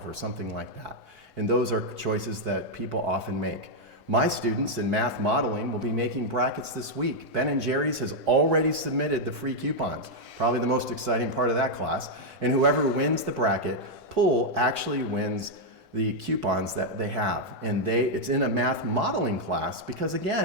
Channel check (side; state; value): both; normal; correlation -0.02